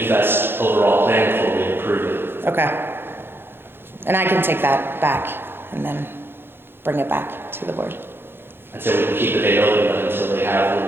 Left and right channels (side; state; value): left; late; 0.10 ms